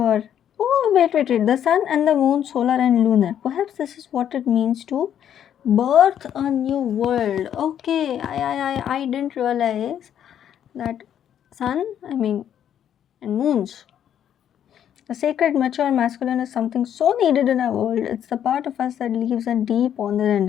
Oh, wait. The sun and the moon, solar and lunar. Perhaps this is what it means to birth a new world. Okay, I didn't realize that sun, and moons. The sacred, mature masculine is something so needed in our world. It's the part of us that leaves a deep honor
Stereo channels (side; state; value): right; quieter; 9.8 dB